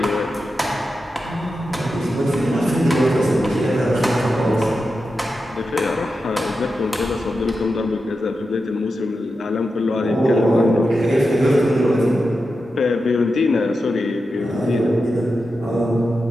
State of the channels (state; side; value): normal; both; correlation 0.90